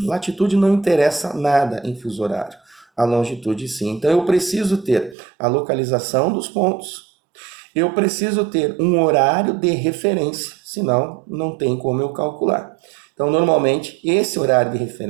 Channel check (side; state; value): left; drops out; at 5.2 s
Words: Latitude não interessa nada em fuso horário. A longitude sim. Então eu preciso ter a localização dos pontos. Eu preciso ter um horário de referência, senão não tem como eu calcular. Então, normalmente, esse horário de